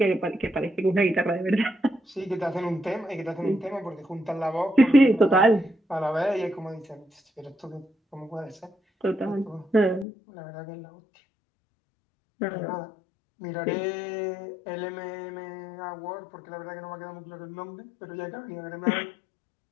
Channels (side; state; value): right; drops out; at 10.1 s